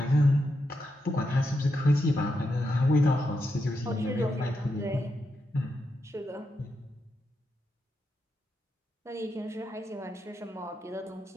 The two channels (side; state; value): both; normal; correlation 0.84